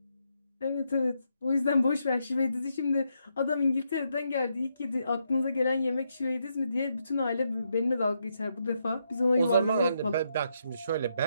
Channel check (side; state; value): both; inverted; correlation -0.79